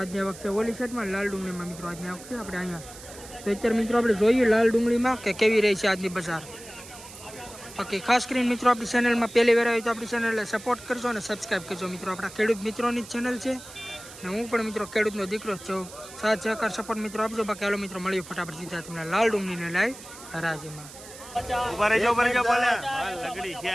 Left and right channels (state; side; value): noise; right; hiss, 16 dB below the sound